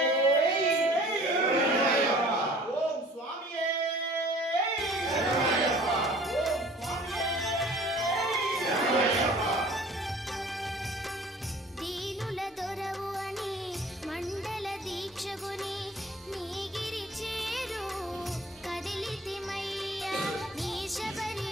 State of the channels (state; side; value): normal; both; correlation 0.49